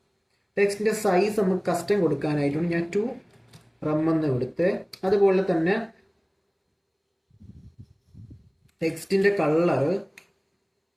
ടെക്സ്റ്റിൻ്റെ സൈസ് നമുക്ക് കസ്റ്റം കൊടുക്കാനായിട്ടുണ്ട്. ഞാൻ 2 റം എന്ന് കൊടുത്ത്, അതുപോലെ തന്നെ ടെക്സ്റ്റിൻ്റെ കളറ്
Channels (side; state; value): both; identical; correlation 1.00